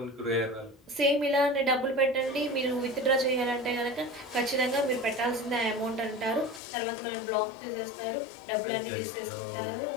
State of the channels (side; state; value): right; drops out; at 6.6 s